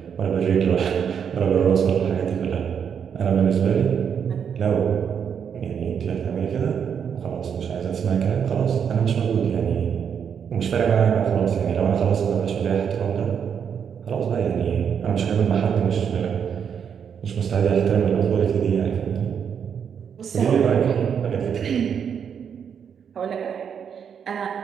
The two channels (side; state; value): left; quieter; 7.5 dB